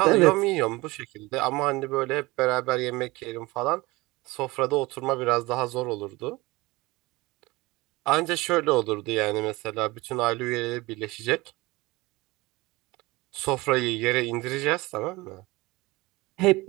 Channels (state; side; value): quieter; left; 21.8 dB